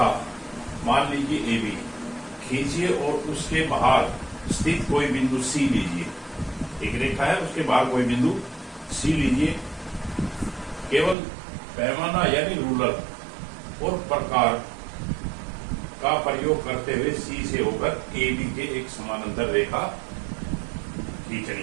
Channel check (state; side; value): drops out; left; at 11.2 s